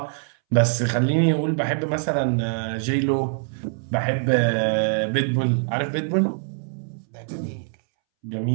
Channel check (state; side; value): silent; left; 63 dB below the other